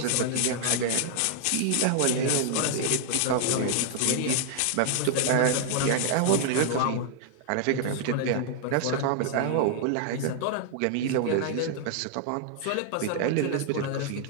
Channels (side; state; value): both; different; correlation 0.00